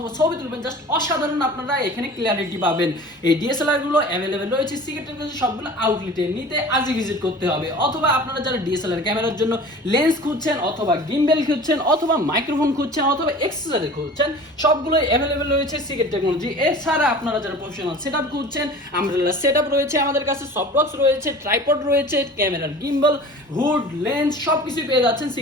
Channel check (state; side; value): normal; both; correlation 0.40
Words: ছবি তুলবেন, জাস্ট অসাধারণ আপনারা এখানে ক্লিয়ারিটি পাবেন। এই ডিএসএলআর গুলো অ্যাভেলেবেল রয়েছে সিকেটের কাছে সবগুলো আউটলেটে। নিতে আজই ভিজিট করতে হবে। অথবা আপনারা যারা ডিএসএলআর ক্যামেরার জন্য লেন্স খুঁজছেন অথবা গিম্বেল খুঁজছেন অথবা মাইক্রোফোন খুঁজছেন অথবা এক্সেসরি খুঁজছেন, সবগুলোই অ্যাভেলেবেল রয়েছে সিকেট টেকনোলজি। এছাড়া আপনারা যারা প্রফেশনাল সেটআপ খুঁজছেন, আমব্রেলা সেটআপ রয়েছে আমাদের কাছে, সফট বক্স রয়েছে, ট্রাইপড রয়েছে, ক্যামেরার গিম্বল, হুড, লেন্স সবকিছু পেয়ে যাচ্ছেন